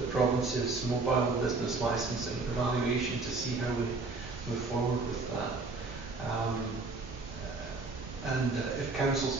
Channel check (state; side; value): quieter; left; 3.7 dB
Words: province's mobile business licensing evaluation to see how we move forward with that. And if council's